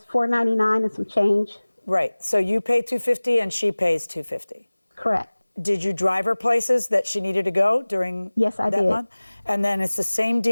$499 and some change. Right. So you pay $250 and she pays $250. Correct. Did you drive her places that she needed to go during Yes, I that did. month? And then it's the same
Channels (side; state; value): both; inverted; correlation -1.00